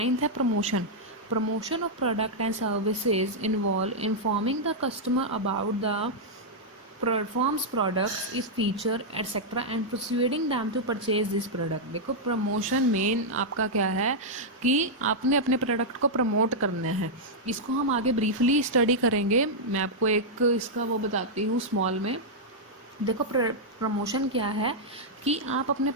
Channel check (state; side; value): normal; both; correlation -0.06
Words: है promotion. Promotion of product and services involve informing the customer about the performs products its feature etcetera and persuading them to purchase this product. देखो प्रमोशन मेन आपका क्या है कि आपने अपने प्रोडक्ट को प्रमोट करना है। इसको हम आगे ब्रीफली स्टडी करेंगे, मैं आपको एक इसका वो बताती हूँ स्मॉल में। देखो प्रमोशन क्या है कि आप अपने